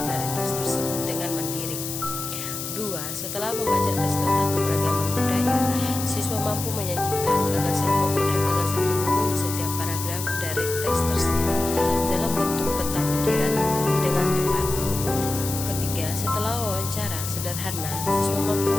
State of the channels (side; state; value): left; noise; hiss, 6 dB below the sound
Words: dari teks tersebut dengan mandiri. 2. Setelah membaca teks tentang keberagaman budaya, siswa mampu menyajikan gagasan pokok dan gagasan pendukung di setiap paragraf dari teks tersebut dalam bentuk peta pikiran dengan tepat. Ketiga, setelah wawancara sederhana, siswa mampu